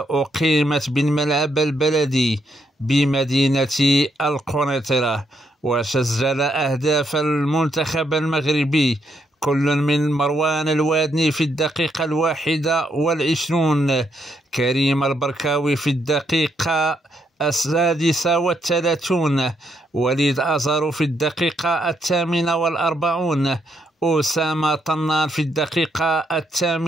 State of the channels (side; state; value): both; normal; correlation 0.76